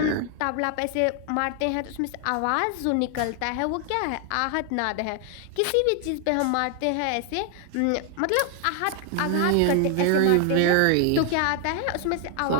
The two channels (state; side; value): different; both; correlation 0.00